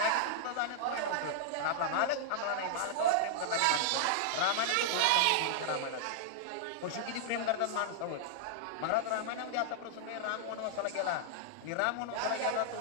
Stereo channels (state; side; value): different; both; correlation -0.01